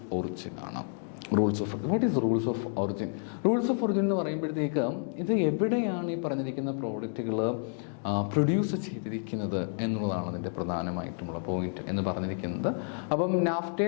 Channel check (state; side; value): silent; right; 58 dB below the other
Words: ഒറിജിൻ ആണ്. What is rules of origin? Rules of origin എന്ന് പറയുമ്പോഴത്തേക്ക് ഇത് എവിടെയാണ് ഈ പറഞ്ഞിരിക്കുന്ന പ്രോഡക്റ്റുകൾ പ്രൊഡ്യൂസ് ചെയ്തിരിക്കുന്നത് എന്നുള്ളതാണ് അതിൻ്റെ പ്രധാനമായിട്ടുമുള്ള പോയിന്റ് എന്ന് പറഞ്ഞിരിക്കുന്നത്. അപ്പം